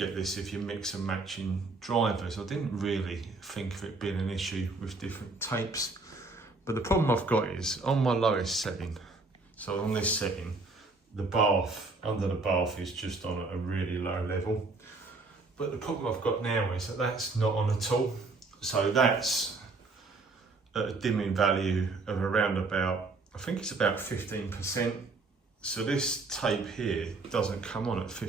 this if you mix and matching drivers. I didn't really think of it being an issue with different tapes, but the problem I've got is on my lowest setting, so on this setting, the bath, under the bath is just on a really low level. But the problem I've got now is that that's not on at all. So that's at a dimming value of around about, I think it's about 15%. So this tape here doesn't come on at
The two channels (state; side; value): quieter; left; 3.6 dB